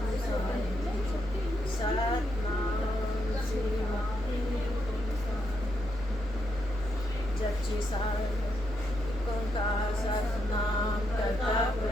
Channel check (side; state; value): both; normal; correlation 0.80